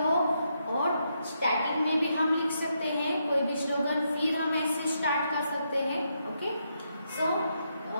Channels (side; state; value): both; inverted; correlation -0.80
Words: और स्टार्टिंग में भी हम लिख सकते हैं कोई भी स्लोगन, फिर हम ऐसे स्टार्ट कर सकते हैं। ओके, सो